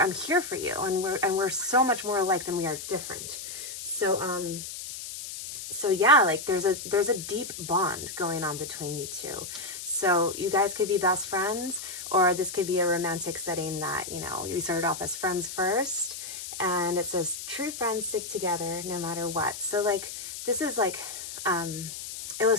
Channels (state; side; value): noise; left; hiss, 9 dB below the sound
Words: here for you. And we're so much more alike than we are different. So, so yeah, like there's a deep bond going on between you two. So you guys could be best friends, or this could be a romantic setting that, you know, you started off as friends first, and it says true friends stick together no matter what. So like, this is like,